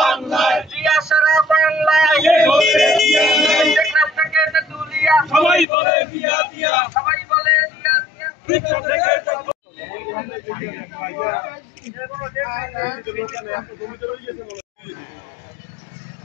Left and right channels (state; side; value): drops out; right; at 5.7 s